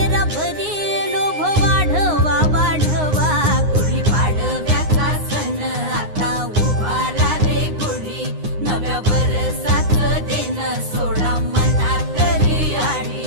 भरी लोभ वाढवा वाढवा। गुढी पाडव्याचा सण आता उभारा रे गुढी, नव्या वर्षाच दिन सोडा मनातली आढी।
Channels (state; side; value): late; left; 9.7 ms